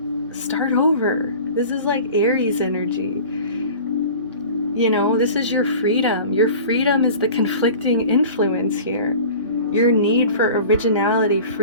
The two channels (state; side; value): inverted; both; correlation -0.40